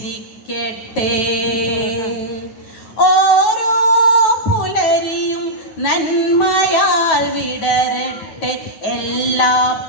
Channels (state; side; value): late; right; 9.2 ms